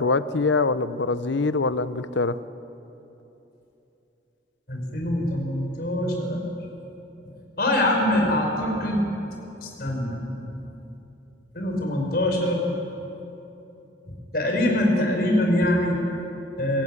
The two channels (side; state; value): both; normal; correlation 0.37